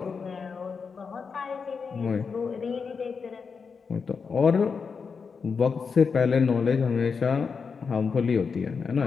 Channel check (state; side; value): quieter; right; 5.5 dB